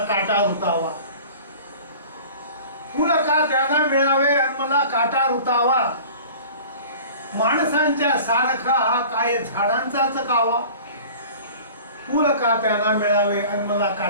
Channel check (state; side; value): inverted; both; correlation -0.43